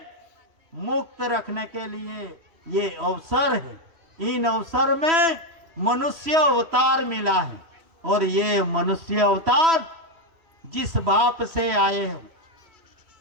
मुक्त रखने के लिए ये अवसर है। इन अवसर में मनुष्य अवतार मिला है, और ये मनुष्य अवतार जिस बाप से आए हैं,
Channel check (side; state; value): left; late; 3.0 ms